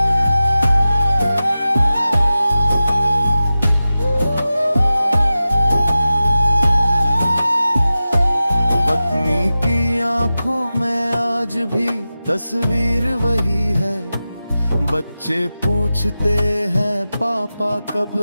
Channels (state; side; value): inverted; both; correlation -0.94